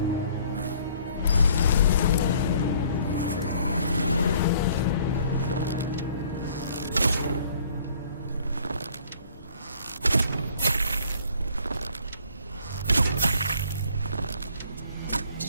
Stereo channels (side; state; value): both; inverted; correlation -0.58